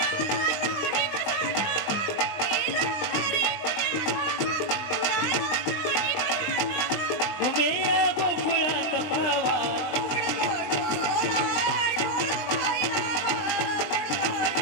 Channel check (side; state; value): right; late; 20 ms